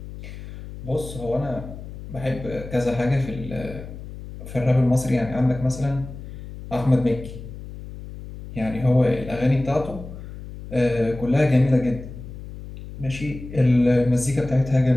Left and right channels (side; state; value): left; noise; hum, 12 dB below the sound